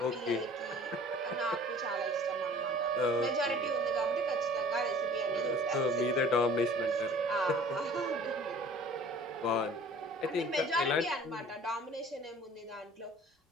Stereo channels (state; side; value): normal; both; correlation 0.48